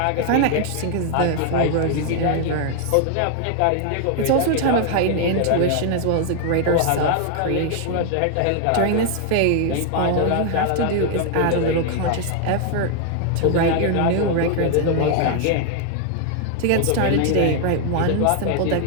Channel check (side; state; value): both; different; correlation 0.00